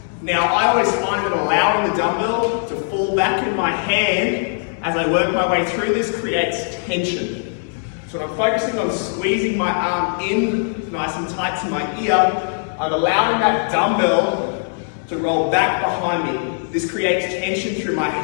Now, I always find that allowing the dumbbell to fall back in my hand as I work my way through this creates tension. So when I'm focusing on squeezing my arm in nice and tight to my ear, I'm allowing that dumbbell to roll back behind me. This creates tension through my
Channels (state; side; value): silent; right; 66 dB below the other